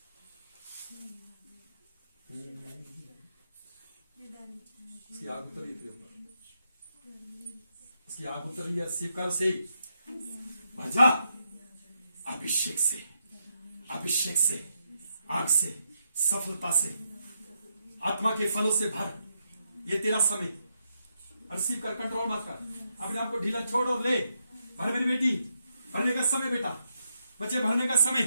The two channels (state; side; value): inverted; both; correlation -0.81